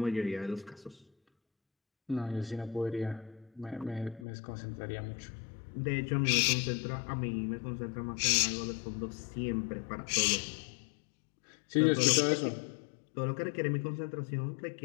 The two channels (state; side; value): drops out; right; at 4.2 s